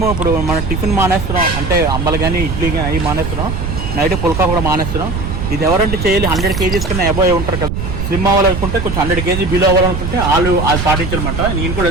ఇప్పుడు మనం టిఫిన్ మానేస్తున్నాం, అంటే అంబలు కానీ ఇడ్లీ కానీ అవి మానేస్తున్నాం. నైట్ పుల్కా కూడా మానేస్తున్నాం. ఇది ఎవరంటే చేయాలి 100 kgs కన్నా అబోవ్ ఉంటారు కదా. స్లిమ్ అవ్వాలనుకుంటే కొంచెం 100 kg బిలో అవ్వాలనుకుంటే వాళ్ళు అది పాటించారనమాట. నేను కూడా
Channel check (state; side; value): noise; right; rumble, 4 dB below the sound